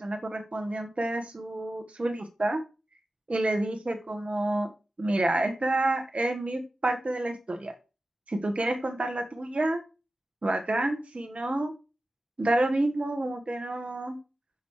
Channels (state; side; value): normal; both; correlation 0.94